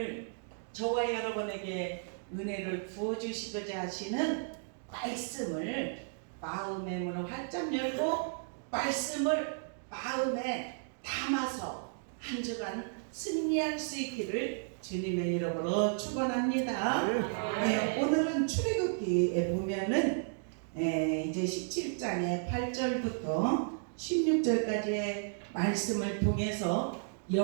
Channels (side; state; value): left; silent; digital silence